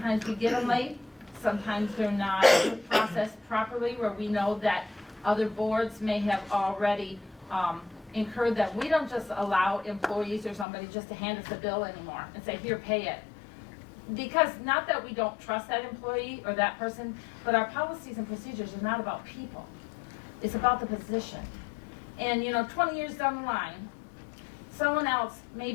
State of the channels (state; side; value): drops out; right; at 10.7 s